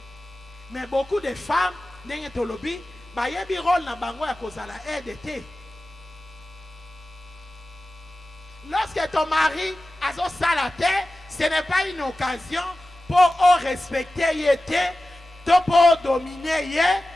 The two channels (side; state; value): both; normal; correlation 0.95